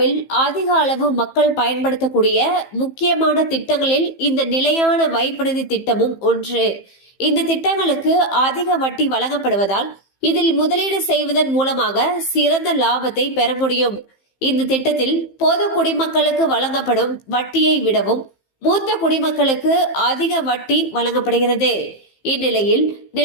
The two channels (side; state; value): right; late; 15 ms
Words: அதிக அளவு மக்கள் பயன்படுத்தக்கூடிய முக்கியமான திட்டங்களில் இந்த நிலையான வைப்பு நிதி திட்டமும் ஒன்று. இந்த திட்டங்களுக்கு அதிக வட்டி வழங்கப்படுவதால் இதில் முதலீடு செய்வதன் மூலமாக சிறந்த லாபத்தை பெற முடியும். இந்த திட்டத்தில் பொது குடிமக்களுக்கு வழங்கப்படும் வட்டியை விடவும் மூத்த குடிமக்களுக்கு அதிக வட்டி வழங்கப்படுகிறது. இந்நிலையில்